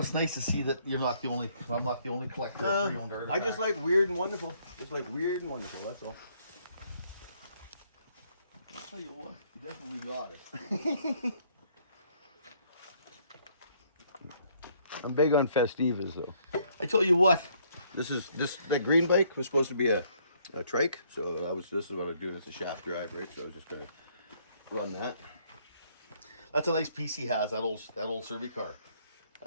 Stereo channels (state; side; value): inverted; both; correlation -0.67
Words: nice to see that you're not the only. I'm not the only collector of pre-owned artifacts. I just like weird and wonderful. Just like weird and wonderful. That's all. I'll tell you what, you definitely got it. I'm big on Festivas though. I tell you what. That green bike was supposed to be a trike, so this is what I'm doing. It's a shaft drive, right? So I was just gonna run that. That's a nice piece he has. That old Survey car.